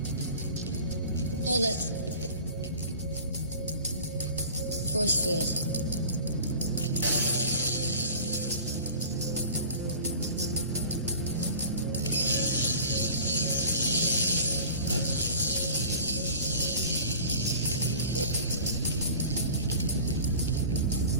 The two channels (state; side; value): inverted; both; correlation -0.41